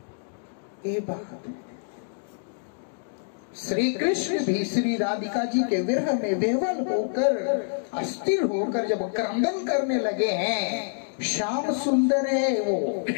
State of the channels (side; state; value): right; silent; digital silence